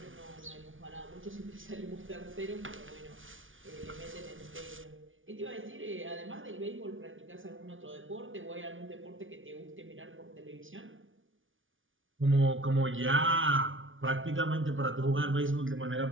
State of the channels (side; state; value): left; late; 0.57 ms